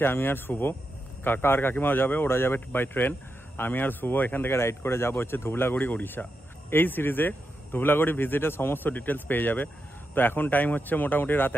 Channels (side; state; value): both; normal; correlation 0.87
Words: আমি আর শুভ, কাকা আর কাকিমাও যাবে, ওরা যাবে বাই ট্রেন। আমি আর শুভ এখান থেকে রাইড করে যাবো হচ্ছে ধুবলাগড়ি, উড়িষ্যা। এই সিরিজে ধুবলাগড়ি ভিজিটের সমস্ত ডিটেলস পেয়ে যাবে। তো এখন টাইম হচ্ছে মোটামুটি রাত